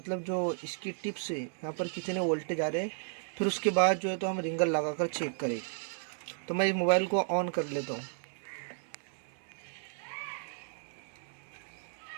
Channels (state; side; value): silent; left; 55 dB below the other